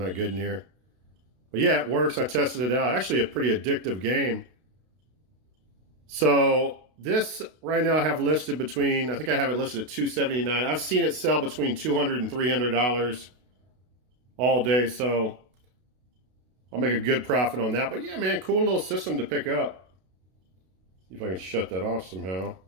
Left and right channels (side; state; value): left; late; 32 ms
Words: good in here. But yeah, it works. I tested it out. Actually a pretty addictive game. So this right now I have listed between, I think I have it listed at $279. I've seen it sell between $200 and $300 all day. So I'll make a good profit on that. But yeah, man, cool little system to pick up. See if I can shut that off somehow.